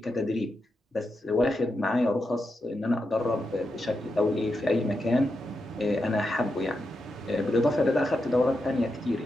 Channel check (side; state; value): both; normal; correlation 0.86